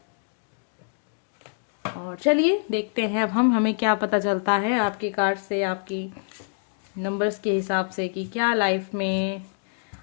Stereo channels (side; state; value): right; silent; digital silence